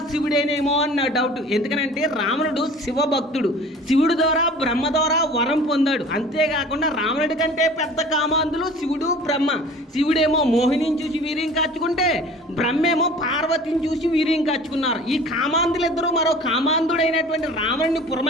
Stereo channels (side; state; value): both; normal; correlation 0.44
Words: శివుడేనేమో అన్న డౌట్. ఎందుకనంటే రావణుడు శివ భక్తుడు, శివుడు ద్వారా బ్రహ్మ ద్వారా వరం పొందాడు. అంతేకాకుండా రావణుడి కంటే పెద్ద కామాంధులు శివుడు బ్రహ్మ. శివుడేమో మోహినిని చూసి వీర్యం కాచుకుంటే బ్రహ్మేమో పార్వతిని చూసి వీర్యం కాచుకున్నారు. ఈ కామాంధులిద్దరూ మరో కామాంధుడైనటువంటి రావణుని